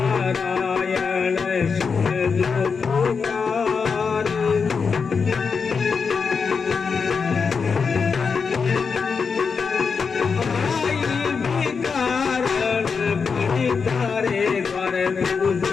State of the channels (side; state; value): right; quieter; 5.5 dB